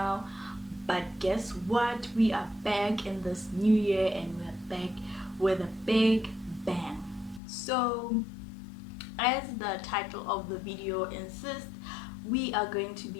but guess what? We are back in this new year and we're back with a big bang. So as the title of the video insists, we are going to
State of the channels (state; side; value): drops out; right; at 7.4 s